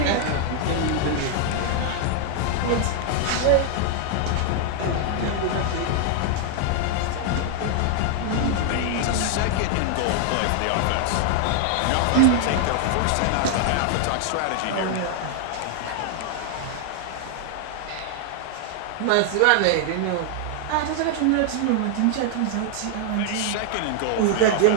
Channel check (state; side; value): different; both; correlation 0.00